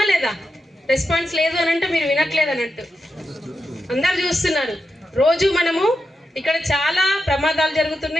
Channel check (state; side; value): normal; both; correlation 0.88